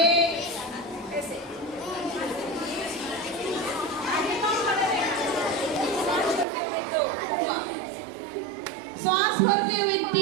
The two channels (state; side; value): drops out; left; at 6.5 s